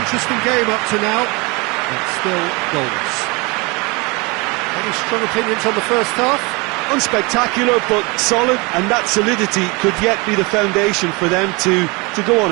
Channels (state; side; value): quieter; left; 27.4 dB